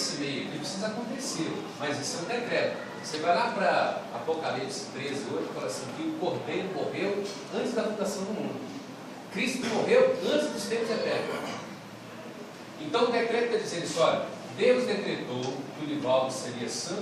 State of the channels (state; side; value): identical; both; correlation 1.00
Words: meio aqui precisa acontecer, mas isso é um decreto. Você vai lá para Apocalipse 13 hoje e fala assim, que o Cordeiro morreu antes da fundação do mundo. Cristo morreu antes dos tempos eternos. Então o decreto está dizendo isso, olha, Deus decretou que o Nivaldo seria